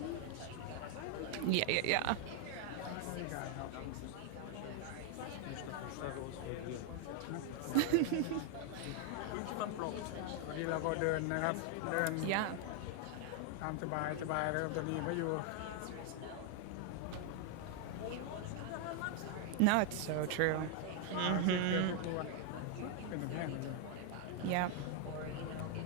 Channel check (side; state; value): both; different; correlation 0.00